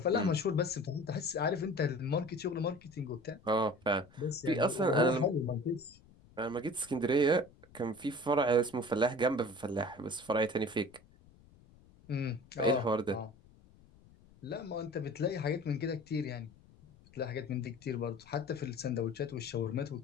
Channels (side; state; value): left; noise; rumble, 26 dB below the sound